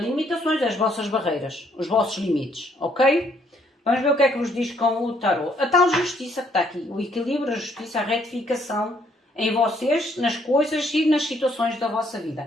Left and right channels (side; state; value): both; normal; correlation 0.68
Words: limitações, as vossas barreiras, os vossos limites, ok? Vamos ver o que é que vos diz com o tarot. A tal justiça que está aqui, o equilíbrio, a justiça, a retificação em vocês, nas coisas e nas situações da vossa